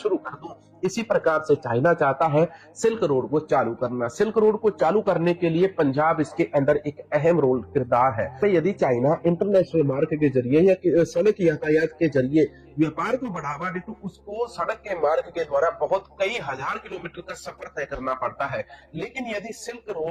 कर दूं। इसी प्रकार से चाइना चाहता है सिल्क रोड को चालू करना। सिल्क रोड को चालू करने के लिए पंजाब इसके अंदर एक अहम रोल किरदार है। तो यदि चाइना इंटरनेशनल मार्ग के जरिए या सड़क यातायात के जरिए व्यापार को बढ़ावा दे तो उसको सड़क के मार्ग के द्वारा बहुत कई हजार किलोमीटर का सफर तय करना पड़ता है। लेकिन यदि सिल्क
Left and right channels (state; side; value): identical; both; correlation 1.00